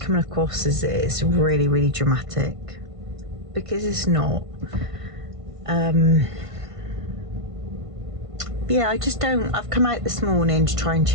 coming across as it's really dramatic, because it's not. Yeah, I just don't. I've come out this morning to try and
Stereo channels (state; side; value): late; left; 1.5 ms